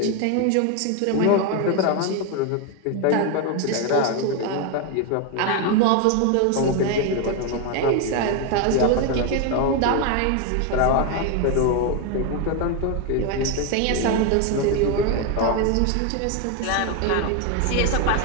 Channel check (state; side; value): different; both; correlation 0.01